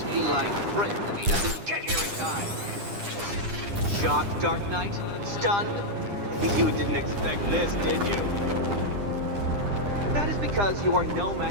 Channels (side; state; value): left; late; 9.9 ms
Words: feline friend if he doesn't get here in time. Shocked, Dark Knight? Stunned? You didn't expect this, did you? That is because you are no